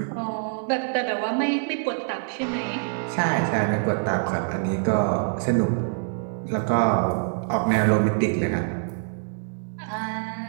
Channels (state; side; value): silent; left; digital silence